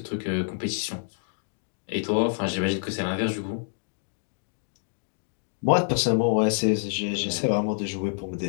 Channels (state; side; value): silent; right; digital silence